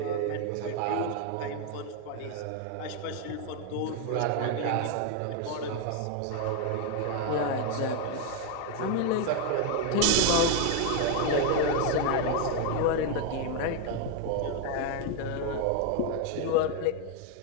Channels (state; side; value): different; both; correlation 0.01